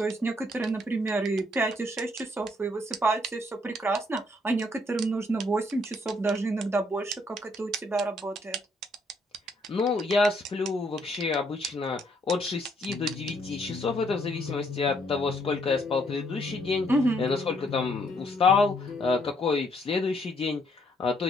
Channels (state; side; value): normal; both; correlation 0.69